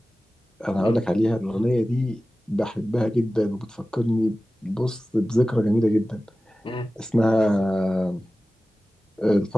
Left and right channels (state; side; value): normal; both; correlation 0.96